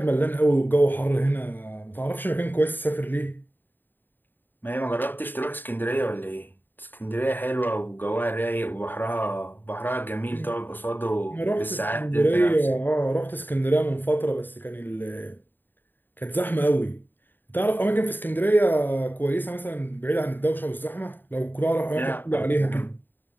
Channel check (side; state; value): right; late; 0.092 ms